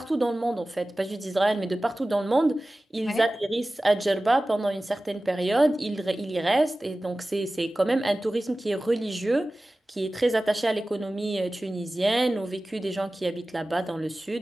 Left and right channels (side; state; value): both; normal; correlation 0.96